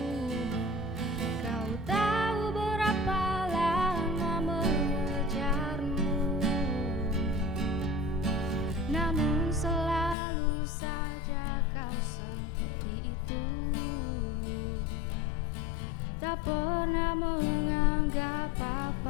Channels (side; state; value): right; drops out; at 10.2 s